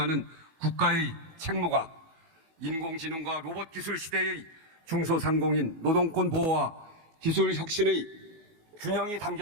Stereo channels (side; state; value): left; late; 18 ms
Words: 국가의 책무가 인공지능과 로봇 기술 시대의 중소상공인 노동권 보호와 기술 혁신의 균형이